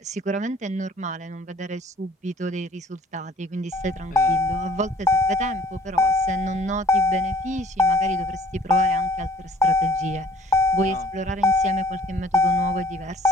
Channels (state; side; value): normal; both; correlation 0.54